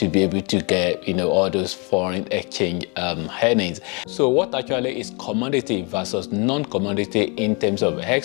be able to get, all those foreign exchange earnings. So what actually is commodity versus non-commodity in terms of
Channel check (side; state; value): right; quieter; 32.2 dB